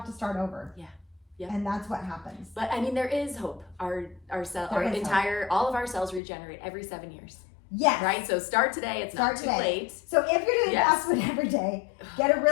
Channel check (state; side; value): drops out; right; at 6.2 s